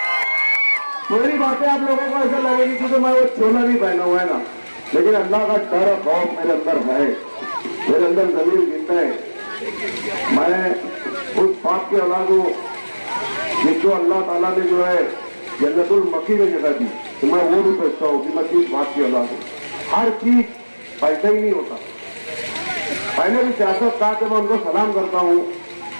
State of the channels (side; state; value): both; inverted; correlation -1.00